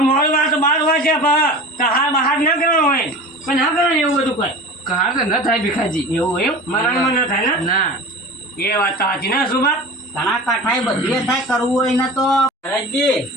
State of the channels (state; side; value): normal; both; correlation 0.35